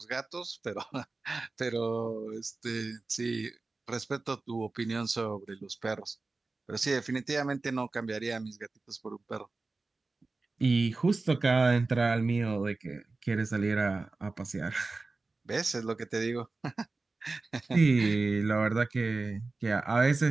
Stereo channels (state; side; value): quieter; left; 3.6 dB